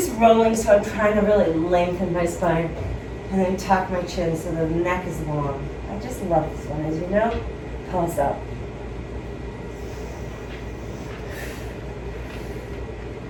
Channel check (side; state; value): both; identical; correlation 1.00